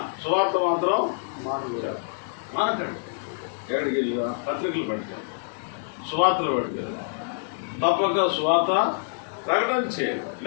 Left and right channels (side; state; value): right; silent; 61 dB below the other